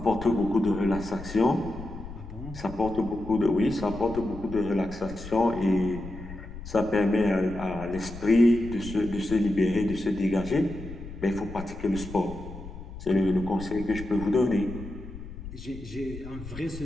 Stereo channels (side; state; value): left; noise; rumble, 12 dB below the sound